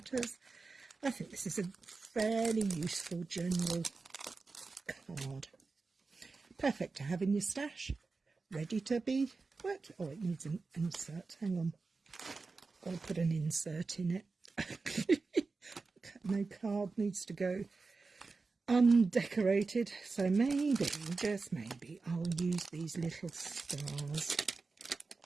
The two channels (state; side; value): quieter; left; 4.1 dB